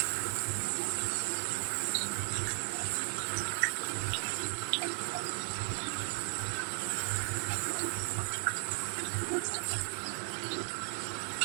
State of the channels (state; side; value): silent; left; 54 dB below the other